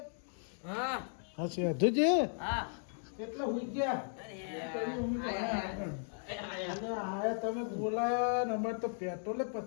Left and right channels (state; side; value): silent; right; 54 dB below the other